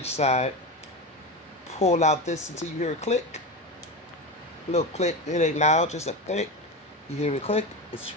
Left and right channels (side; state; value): both; normal; correlation 0.21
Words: side. Pull out this until you hear a click. A little click. It ain't loud, just a click. You hear a click. It's